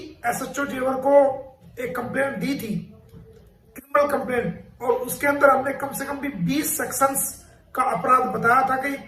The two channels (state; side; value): identical; both; correlation 1.00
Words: एसएचओ जेवर को एक कंप्लेंट दी थी, क्रिमिनल कंप्लेंट, और उसके अंदर हमने कम से कम भी 20 सेक्शंस का अपराध बताया था कि